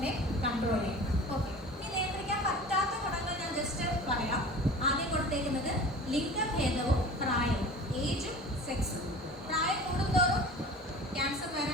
കൺട്രോൾ ചെയ്യാൻ. ഓക്കെ, ഇനി നിയന്ത്രിക്കാൻ പറ്റാത്ത ഘടകങ്ങൾ ഞാൻ ജസ്റ്റ് പറയാം. ആദ്യം കൊടുത്തേക്കുന്നത് ലിംഗഭേദവും പ്രായവും, ഏജും സെക്സും. പ്രായം കൂടുന്തോറും ക്യാൻസർ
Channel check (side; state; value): both; normal; correlation 0.39